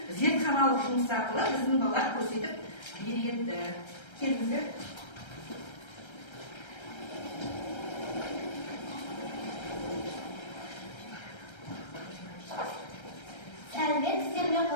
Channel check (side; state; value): right; late; 1.3 ms